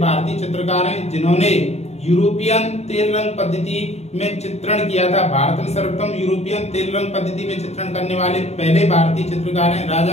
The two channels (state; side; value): late; right; 0.31 ms